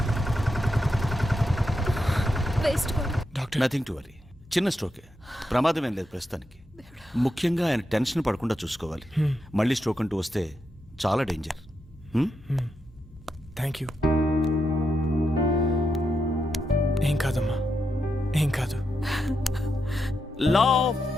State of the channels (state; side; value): normal; both; correlation 0.84